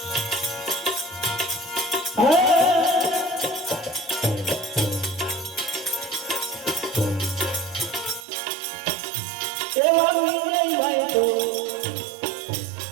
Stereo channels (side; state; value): left; drops out; at 8.2 s